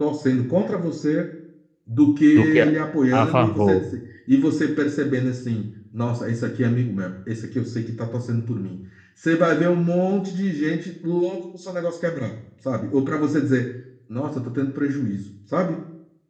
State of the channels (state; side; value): identical; both; correlation 1.00